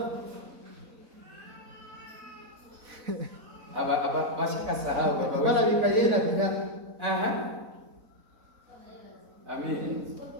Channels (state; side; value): late; left; 4.0 ms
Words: Aba bashaka sahaba bana bikayena bya. Aha. Amen.